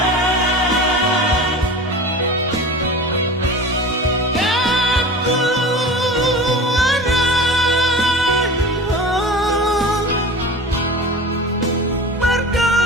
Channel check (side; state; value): both; normal; correlation 0.34